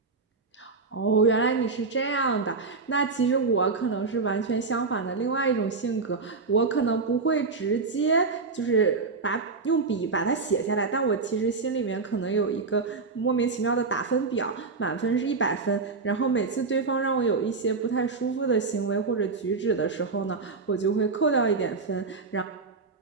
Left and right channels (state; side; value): quieter; left; 4.3 dB